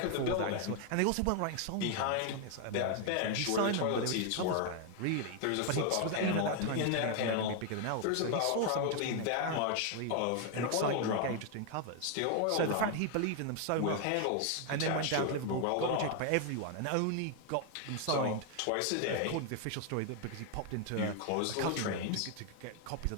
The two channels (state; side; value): different; both; correlation 0.00